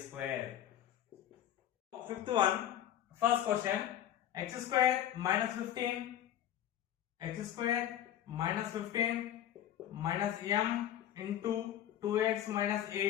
Fifth one, first question, x square minus 15 minus m into 2x minus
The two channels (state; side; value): quieter; right; 11.4 dB